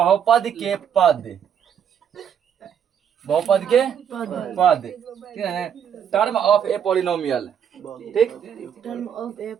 के पद, बहुपद के पद, ठीक है। टर्म ऑफ ए पॉलिनोमियल, ठीक। टर्म ऑफ ए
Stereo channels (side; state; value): left; quieter; 8.4 dB